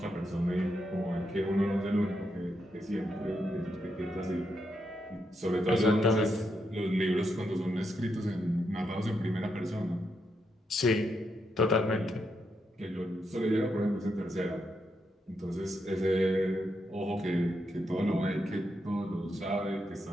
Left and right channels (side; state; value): both; normal; correlation 0.82